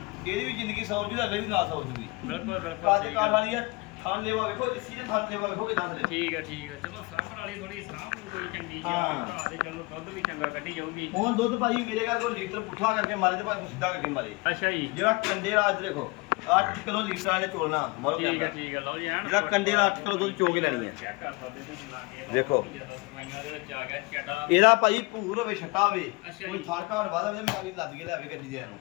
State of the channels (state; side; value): quieter; right; 25.9 dB